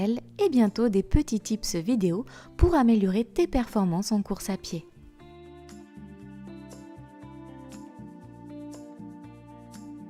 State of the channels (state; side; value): identical; both; correlation 1.00